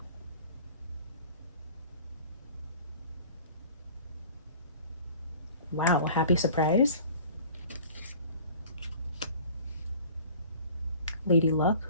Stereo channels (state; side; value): inverted; both; correlation -0.47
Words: Wow, happy surprise. Lady Luck